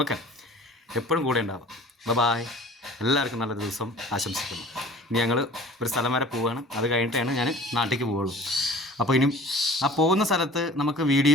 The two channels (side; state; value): both; normal; correlation 0.45